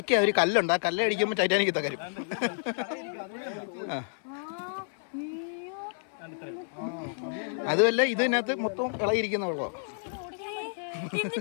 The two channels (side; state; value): right; silent; 58 dB below the other